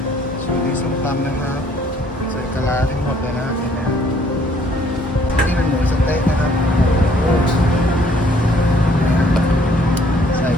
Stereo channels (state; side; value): normal; both; correlation 0.62